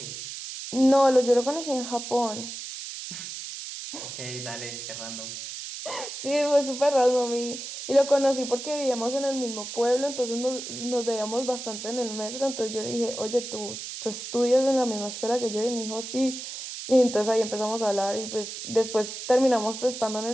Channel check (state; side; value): noise; right; hiss, 8 dB below the sound